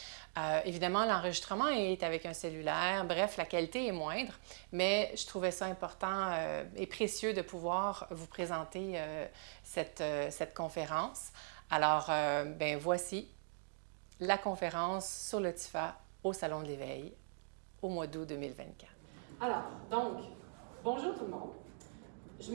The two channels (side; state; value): left; silent; digital silence